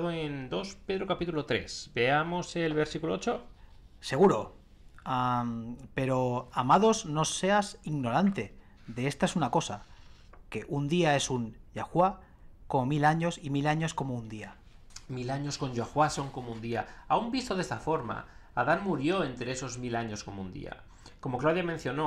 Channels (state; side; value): identical; both; correlation 1.00